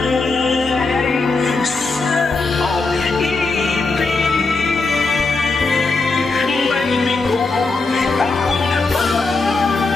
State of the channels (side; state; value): right; quieter; 3.7 dB